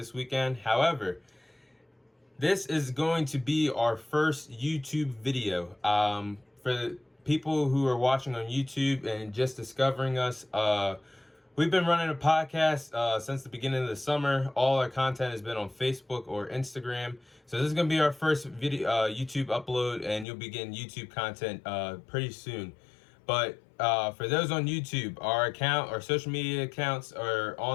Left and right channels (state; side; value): drops out; right; at 20.2 s